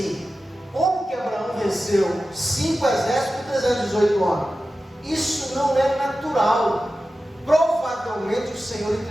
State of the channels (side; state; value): both; normal; correlation 0.93